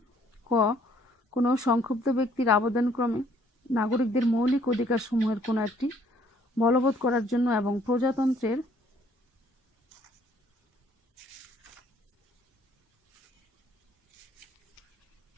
ক কোনো সংক্ষুব্ধ ব্যক্তির আবেদনক্রমে নাগরিকদের মৌলিক অধিকারসমূহের কোনো একটি বলবৎ করার জন্য এবং প্রজাতন্ত্রের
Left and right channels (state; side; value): normal; both; correlation 0.63